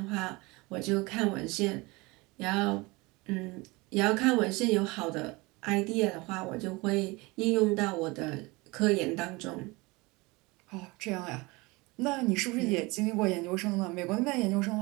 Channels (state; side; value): quieter; left; 24.2 dB